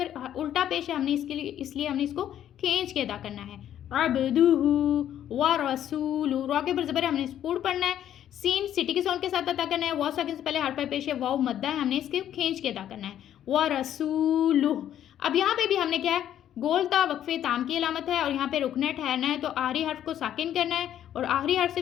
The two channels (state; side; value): quieter; right; 10.8 dB